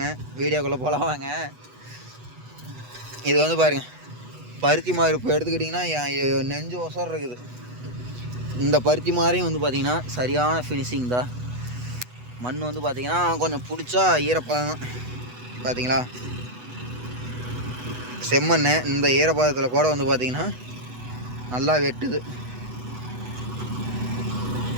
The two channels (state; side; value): late; left; 8.1 ms